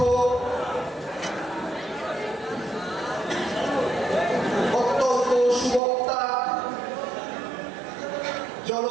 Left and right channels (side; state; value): left; drops out; at 5.8 s